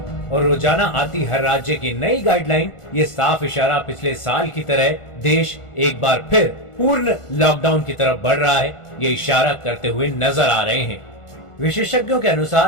और रोजाना आती हर राज्य की नई गाइडलाइन, ये साफ इशारा पिछले साल की तरह देश एक बार फिर पूर्ण लॉकडाउन की तरफ बढ़ रहा है, ये इशारा करते हुए नजर आ रहे हैं। विशेषज्ञों के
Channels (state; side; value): late; right; 1.4 ms